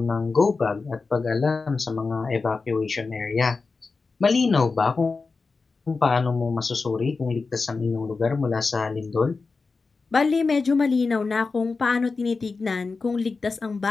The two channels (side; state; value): right; quieter; 4.3 dB